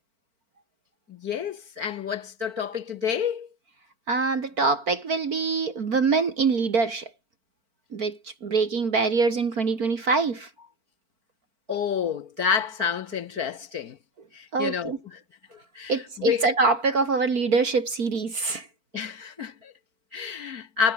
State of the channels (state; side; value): late; left; 4.5 ms